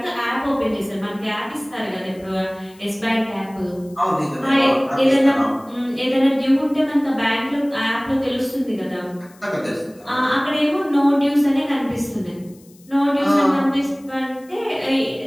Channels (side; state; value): left; noise; hiss, 28 dB below the sound